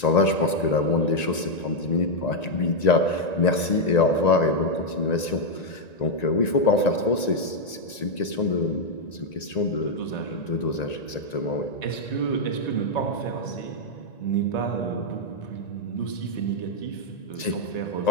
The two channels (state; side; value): late; right; 1.9 ms